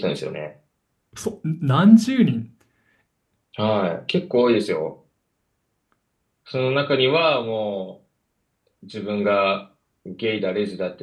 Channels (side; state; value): both; identical; correlation 1.00